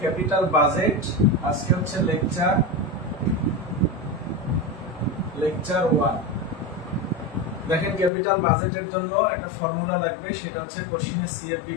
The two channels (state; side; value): drops out; right; at 8.1 s